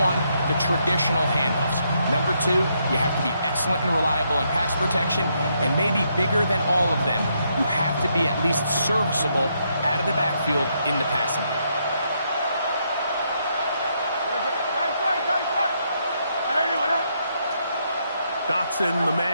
the traditional handoffs. Number two, you have to be excellent and reliable in pass protection, and maybe bigger than all of them, you have to be at least serviceable out of the backfield in the passing game. Dotson, the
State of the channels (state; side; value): inverted; both; correlation -0.76